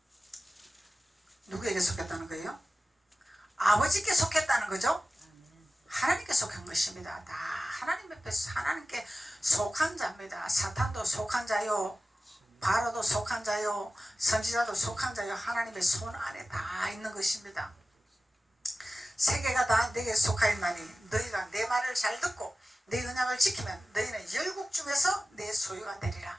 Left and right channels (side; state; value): both; normal; correlation 0.95